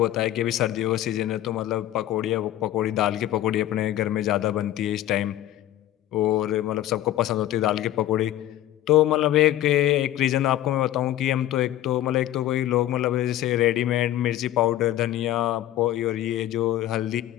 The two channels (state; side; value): quieter; right; 13.4 dB